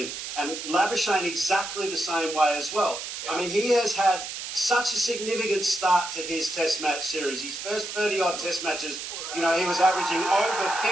and Labuschagne exactly the same way as well. I mean, he has had such a significant start to his Test match series. His first 30-odd Test matches, he was averaging over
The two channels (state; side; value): noise; right; hiss, 7 dB below the sound